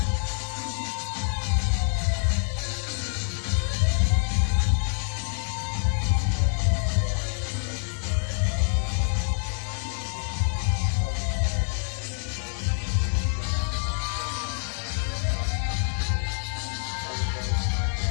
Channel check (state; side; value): silent; right; 60 dB below the other